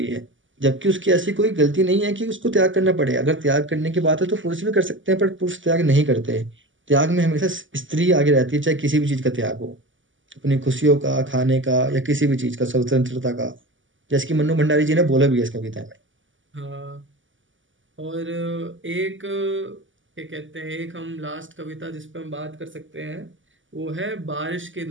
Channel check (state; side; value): late; left; 0.56 ms